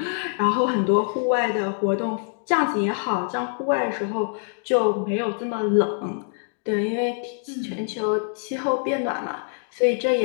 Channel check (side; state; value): right; silent; 59 dB below the other